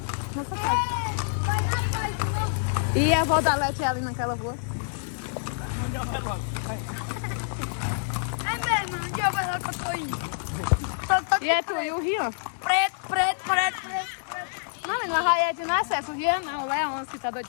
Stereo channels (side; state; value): right; silent; 59 dB below the other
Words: Nossa casa. E a avó da Lete é ali naquela rua? É mesmo, onde eu vou lá que eu tô indo? E é tu e o Rian? Preto, preto, preto, preto. Não, mas na Raiete não é acesso. O Rian não, o Leão que tá doido